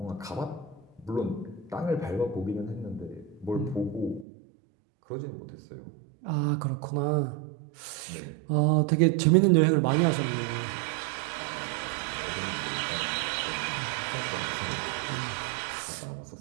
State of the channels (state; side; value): drops out; left; at 4.2 s